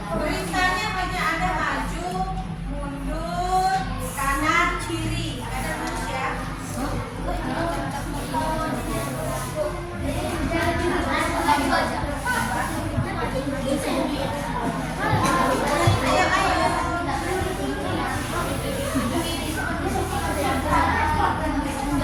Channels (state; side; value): identical; both; correlation 1.00